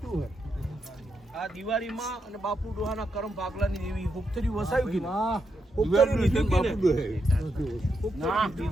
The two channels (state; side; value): normal; both; correlation 0.83